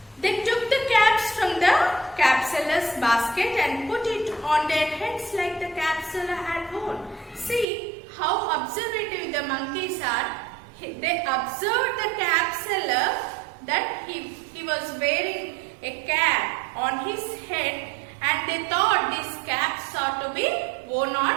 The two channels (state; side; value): drops out; left; at 7.7 s